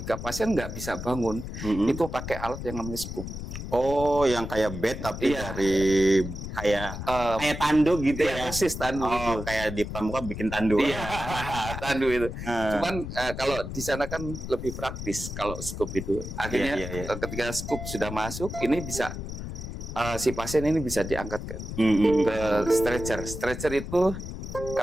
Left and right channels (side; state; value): left; noise; rumble, 7 dB below the sound